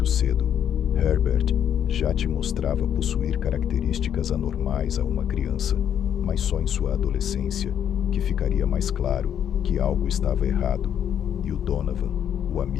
cedo, Herbert já te mostrava possuir características anormais a uma criança, mas só em sua adolescência que ficaria mais claro que algo estava errado. E o Donovan, o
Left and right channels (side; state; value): right; quieter; 9.3 dB